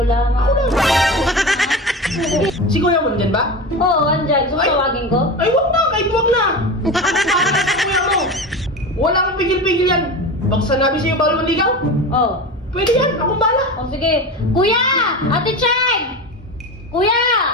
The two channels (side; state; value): both; normal; correlation 0.27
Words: lamang. Si Kuya mo nandyan ba? Oo, andyan. Gusto Ay. tawagin ko? Ay, wag na! Kahit wag na! Ako para sa kuya mo! Wala kang pigil-pigil yan! Pag sanabi sa'yo bawal manligaw, Oo. pwede yan! Akong bala! O sige. Kuya! Ate Chay! Kuya!